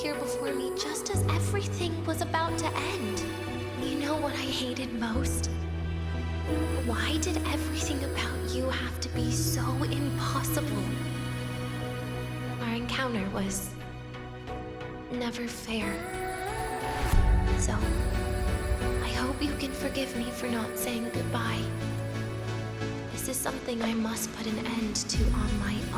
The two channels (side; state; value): both; identical; correlation 1.00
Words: before me just as everything was about to end? You know what I hated most? Why did everything about you have to be so impossible? Our encounter was never fair. So, I hope you can forgive me for not saying goodbye. This is something I must put an end to on my